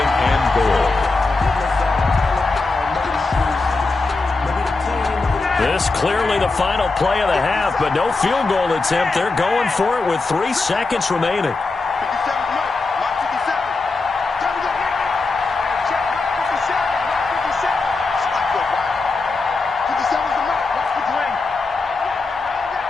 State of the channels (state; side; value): quieter; right; 3.7 dB